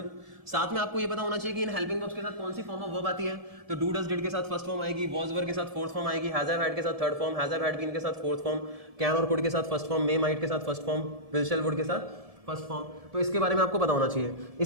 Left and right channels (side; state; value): left; late; 1.7 ms